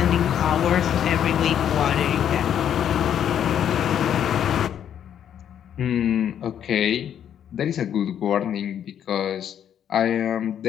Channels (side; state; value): right; quieter; 9.5 dB